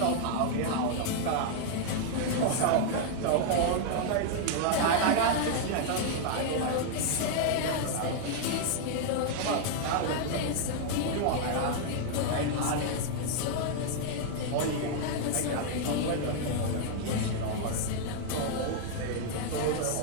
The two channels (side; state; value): both; different; correlation 0.00